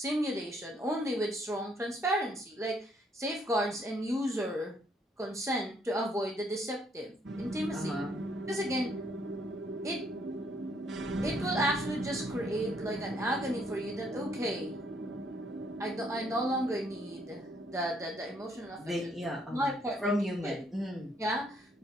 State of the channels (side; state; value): both; normal; correlation 0.69